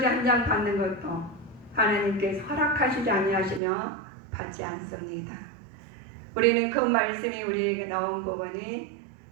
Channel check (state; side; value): drops out; left; at 3.6 s